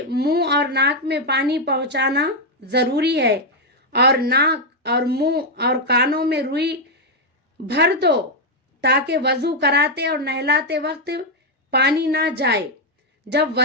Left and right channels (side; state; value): both; normal; correlation 0.01